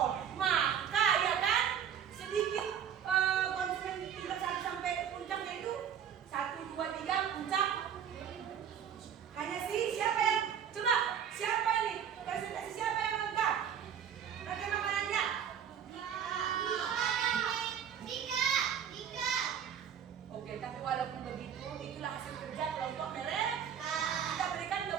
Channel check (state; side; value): quieter; left; 8.5 dB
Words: Maka ya kan, sedikit konsumen tingkat 1 sampai puncaknya itu 1, 2, 3 puncak. Hanya sih siapa yang coba siapa ini presentasi siapa yang Tapi walaupun begitu, itulah hasil kerja kelompok mereka. Kita berikan